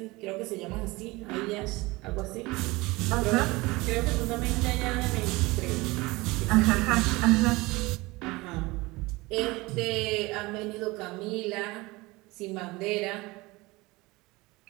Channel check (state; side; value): quieter; left; 22.4 dB